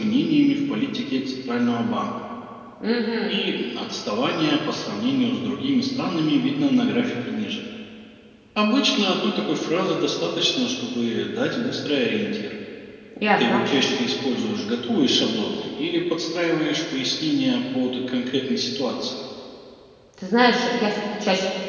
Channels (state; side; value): identical; both; correlation 1.00